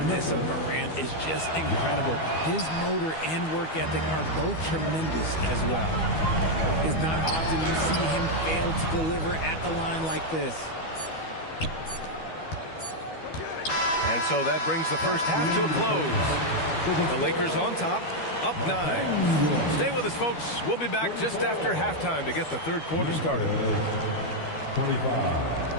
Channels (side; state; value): right; late; 12 ms